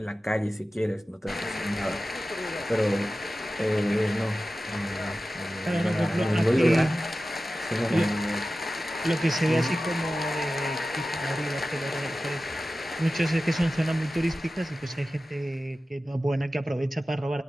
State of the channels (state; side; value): normal; both; correlation 0.95